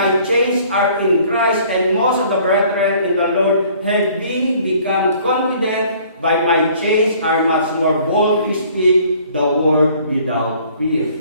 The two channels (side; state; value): both; inverted; correlation -0.56